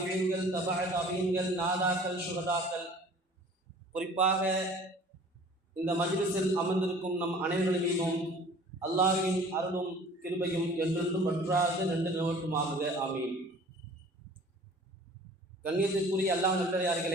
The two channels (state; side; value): normal; both; correlation 0.48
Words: தபஅ தாபிஈன்கள், நாதாக்கள், சுஹதாக்கள், குறிப்பாக இந்த மஜ்லிஸில் அமர்ந்திருக்கும் நம் அனைவரின் மீதும் அல்லாஹ்வின் அருளும் கிருபையும் என்றென்றும் வற்றாத நின்று நிலவட்டுமாக. ஆமீன். கண்ணியத்திற்குரிய அல்லாஹ்